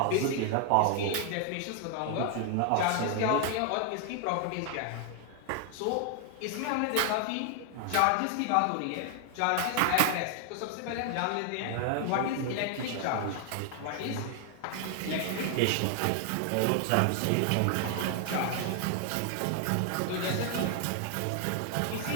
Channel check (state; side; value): different; both; correlation 0.00